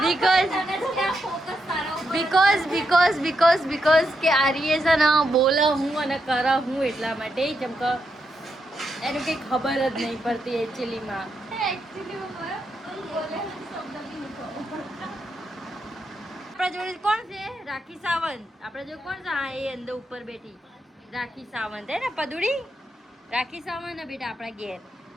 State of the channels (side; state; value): both; normal; correlation 0.83